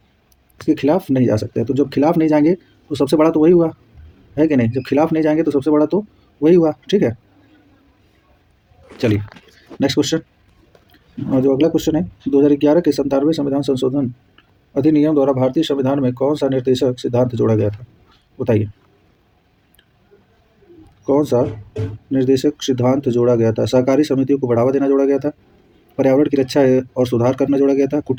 इसके खिलाफ नहीं जा सकते हैं। तो जब खिलाफ नहीं जाएंगे तो सबसे बड़ा तो वही हुआ, है कि नहीं? जब खिलाफ नहीं जाएंगे तो सबसे बड़ा तो वही हुआ, ठीक है। चलिए नेक्स्ट क्वेश्चन। और जो अगला क्वेश्चन है, 2011 के 97वें संविधान संशोधन अधिनियम द्वारा भारतीय संविधान में कौन सा निर्देशक सिद्धांत जोड़ा गया था? बताइए, कौन सा निर्देशक सिद्धांत जोड़ा गया था? सहकारी समितियों को बढ़ावा देना जोड़ा गया था, पर्यावरण की रक्षा और सुधार करना जोड़ा गया था,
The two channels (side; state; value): both; identical; correlation 1.00